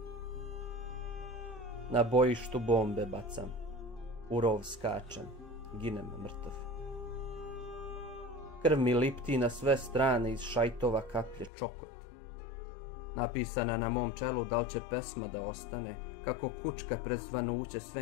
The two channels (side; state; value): right; drops out; at 11.5 s